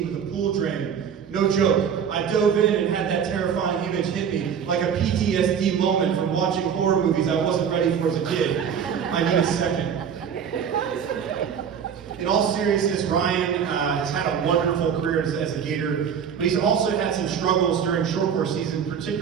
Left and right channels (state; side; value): quieter; left; 7.6 dB